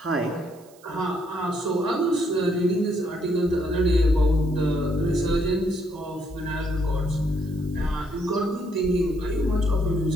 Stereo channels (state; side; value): noise; right; hiss, 27 dB below the sound